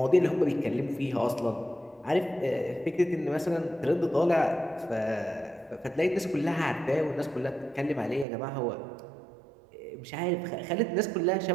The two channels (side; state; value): left; drops out; at 8.2 s